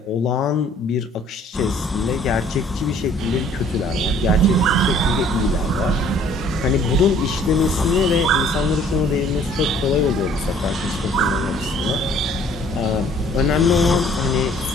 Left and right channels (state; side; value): normal; both; correlation 0.57